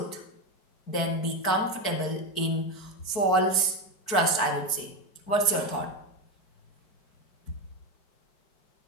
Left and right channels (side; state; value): right; late; 4.6 ms